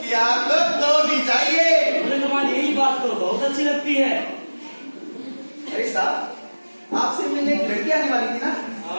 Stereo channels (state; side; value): inverted; both; correlation -1.00